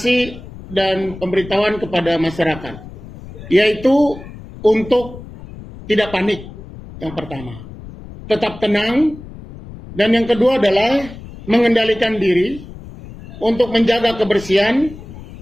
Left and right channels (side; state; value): left; noise; rumble, 15 dB below the sound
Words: dan pemberitahuan kepada masyarakat, yaitu untuk tidak panik. Yang pertama, tetap tenang, dan yang kedua adalah mengendalikan diri untuk menjaga kebersihan,